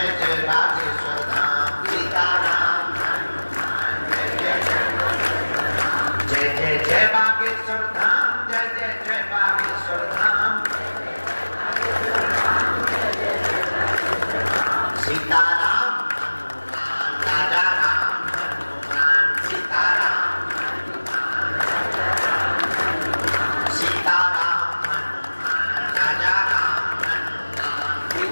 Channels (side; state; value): both; inverted; correlation -1.00